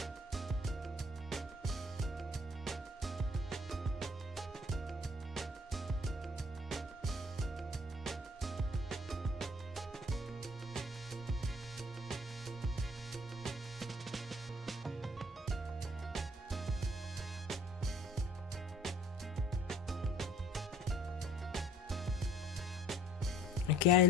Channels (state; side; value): normal; both; correlation 0.53